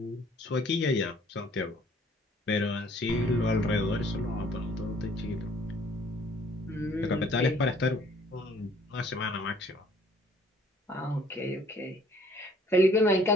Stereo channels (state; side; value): normal; both; correlation 0.58